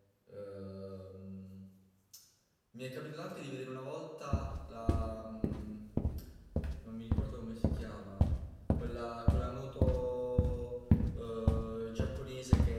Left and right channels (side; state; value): both; identical; correlation 1.00